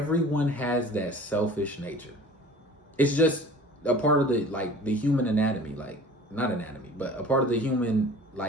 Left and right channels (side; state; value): both; normal; correlation 0.44